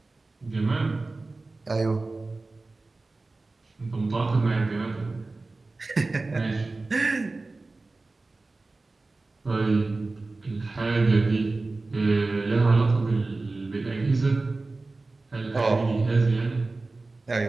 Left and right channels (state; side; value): quieter; left; 3.4 dB